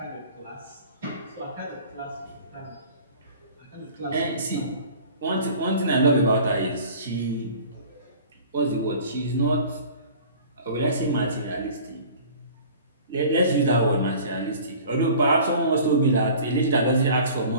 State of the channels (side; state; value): both; inverted; correlation -0.45